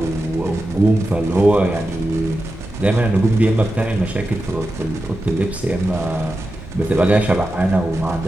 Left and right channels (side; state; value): both; normal; correlation 0.91